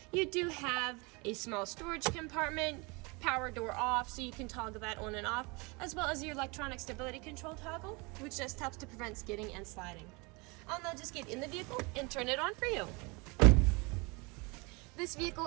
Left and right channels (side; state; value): left; quieter; 28.0 dB